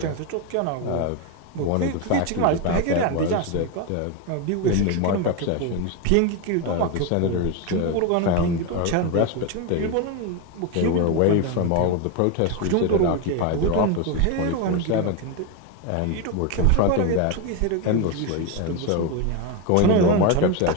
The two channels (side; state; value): both; different; correlation 0.02